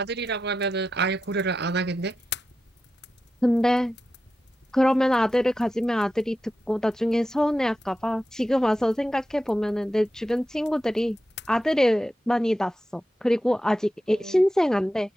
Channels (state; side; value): normal; both; correlation 0.91